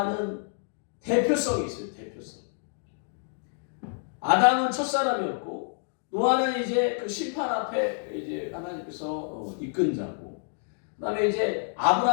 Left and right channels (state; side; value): silent; right; digital silence